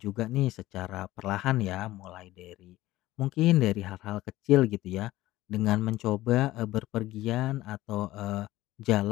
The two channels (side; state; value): right; quieter; 16.7 dB